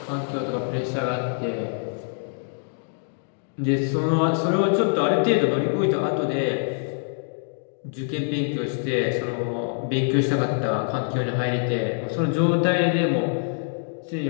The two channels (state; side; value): silent; right; digital silence